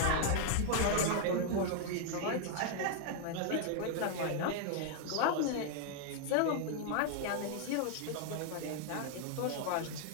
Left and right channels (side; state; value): both; different; correlation 0.00